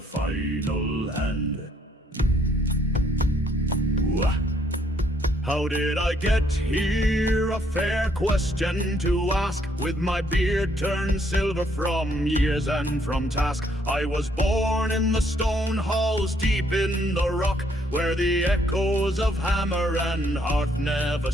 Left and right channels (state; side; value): normal; both; correlation 0.68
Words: final hand. Wah. How did I get here? A fair question to ask. With my beard turned silver from years and from task, I was born in the stone halls deep in the rock, where the echoes of hammer and hearth never